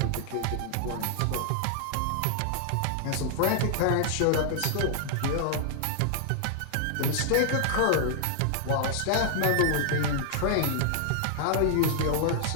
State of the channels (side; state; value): both; different; correlation -0.01